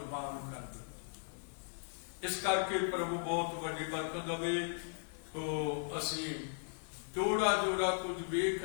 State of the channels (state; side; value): silent; right; digital silence